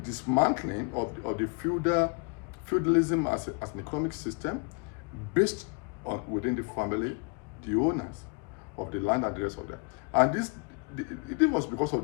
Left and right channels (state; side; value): quieter; right; 33.0 dB